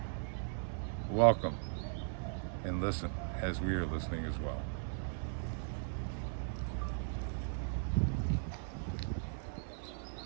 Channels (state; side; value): silent; left; 52 dB below the other